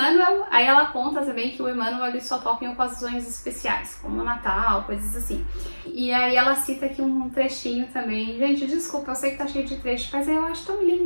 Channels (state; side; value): inverted; both; correlation -1.00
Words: aí ela conta também que o Emmanuel ele só toca em ocasiões especiais, como Natal, coisas assim. E aí ela cita aqui um trechinho também. Gente, desculpa, eu sei que tá cheio de trecho, mas eu acho tão